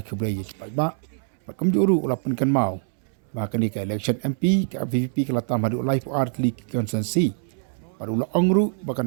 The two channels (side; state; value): left; silent; 62 dB below the other